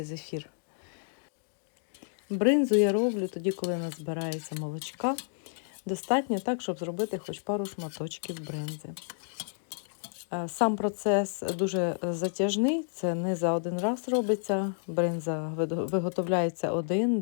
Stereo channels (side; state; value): right; silent; digital silence